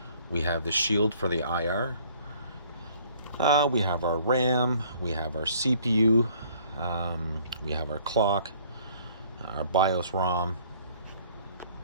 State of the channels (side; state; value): both; inverted; correlation -0.58